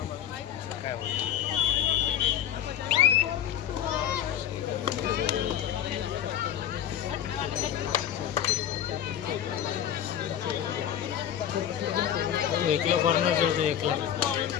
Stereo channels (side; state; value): right; quieter; 10.3 dB